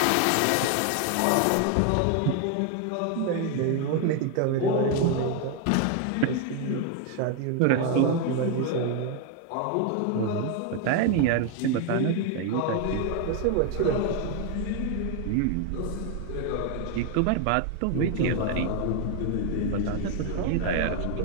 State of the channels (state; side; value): different; both; correlation 0.01